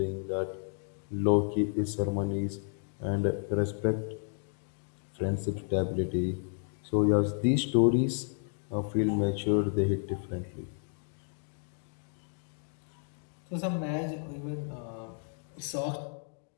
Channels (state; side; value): silent; right; 56 dB below the other